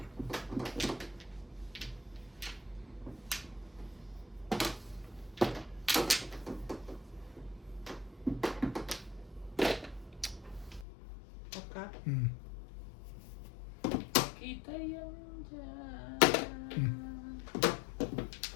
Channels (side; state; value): right; drops out; at 10.9 s